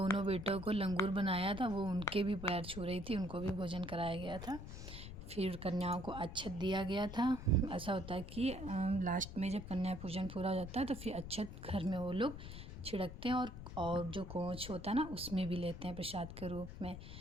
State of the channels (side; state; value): left; noise; rumble, 10 dB below the sound